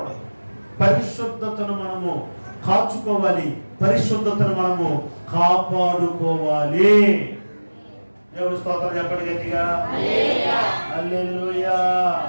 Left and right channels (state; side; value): inverted; both; correlation -1.00